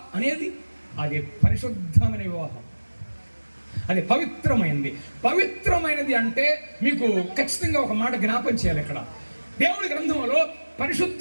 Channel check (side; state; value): both; inverted; correlation -1.00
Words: అనేది అది పరిశుద్ధమైన వివాహం, అది పవిత్రమైనది. పవిత్రమైనది అంటే మీకు ఖచ్చితంగా ఒక మాట జ్ఞాపం చేయాలి. ఇక్కడ దేవుడి గ్రంథంలో